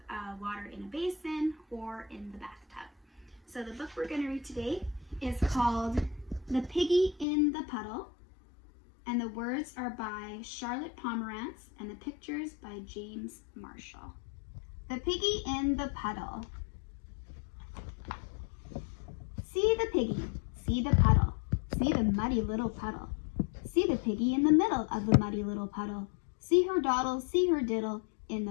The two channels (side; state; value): right; drops out; at 7.2 s